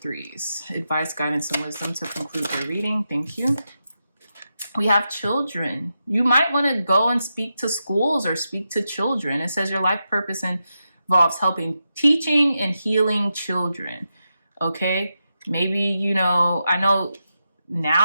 Advice, guidance, and wisdom to conclude your reading. Thank you. We have children. You might want to go and speak to schools or speak to children. It says your life purpose involves helping, teaching, and healing children. Okay? Maybe, I know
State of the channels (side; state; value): both; inverted; correlation -0.88